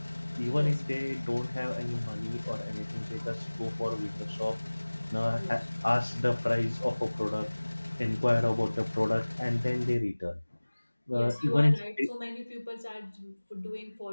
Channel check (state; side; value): inverted; both; correlation -1.00